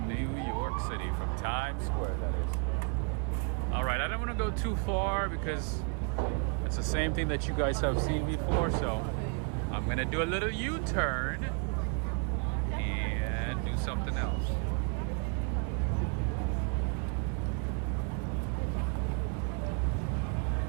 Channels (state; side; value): quieter; left; 38.4 dB